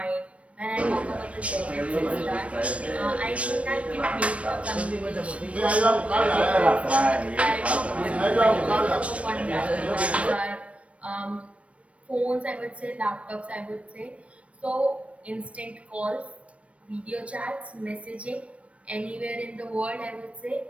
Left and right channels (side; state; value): left; late; 0.063 ms